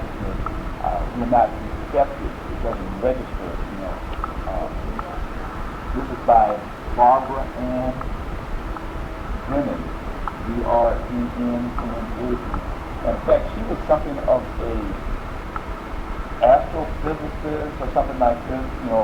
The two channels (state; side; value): identical; both; correlation 1.00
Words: we're not receptive. It doesn't register. This is by Barbara Ann Brennan, B-R-E-N-N-A. In fact, she was something of a astrophysicist or something like this,